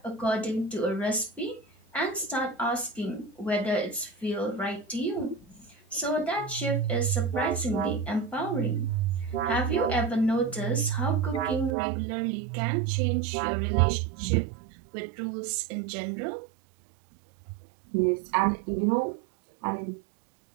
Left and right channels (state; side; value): drops out; left; at 11.7 s